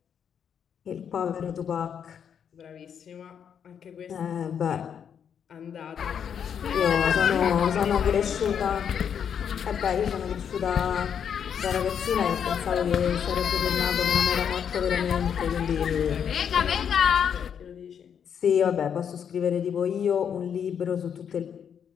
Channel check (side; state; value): right; quieter; 8.0 dB